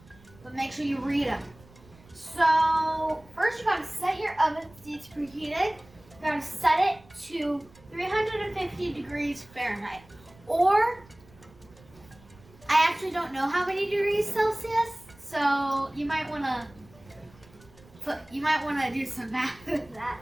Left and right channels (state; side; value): noise; right; rumble, 25 dB below the sound